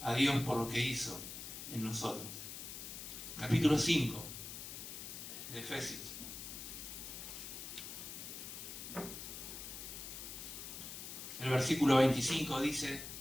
a Dios por lo que hizo en nosotros. Capítulo 5 de Efesios. El versículo 25 dice:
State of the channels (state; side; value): noise; left; hiss, 8 dB below the sound